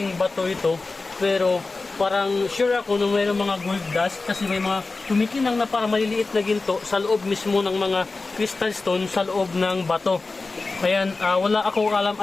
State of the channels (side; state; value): right; quieter; 3.7 dB